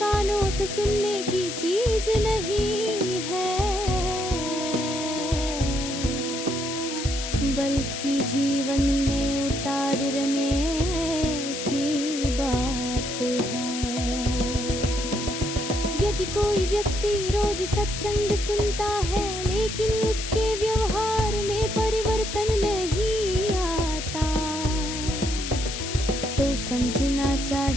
से सुनने की चीज नहीं है, बल्कि जीवन में उतारने की बात है। यदि कोई व्यक्ति रोज सत्संग सुनता है लेकिन उसके व्यवहार में परिवर्तन नहीं आता, तो समझना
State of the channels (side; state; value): left; noise; hiss, 6 dB below the sound